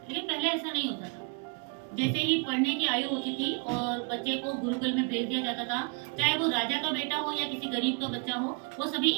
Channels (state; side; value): quieter; left; 35.1 dB